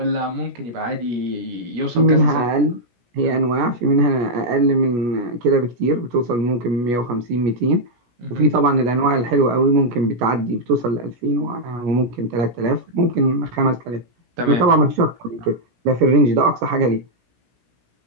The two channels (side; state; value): left; late; 17 ms